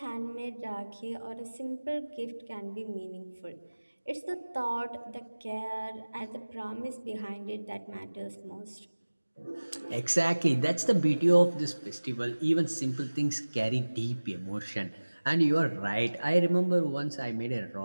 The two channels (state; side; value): inverted; both; correlation -1.00